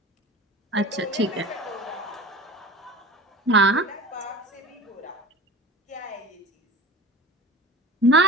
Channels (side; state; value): both; normal; correlation 0.36